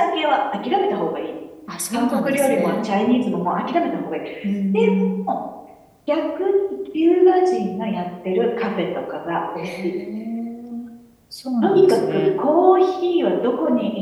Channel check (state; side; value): identical; both; correlation 1.00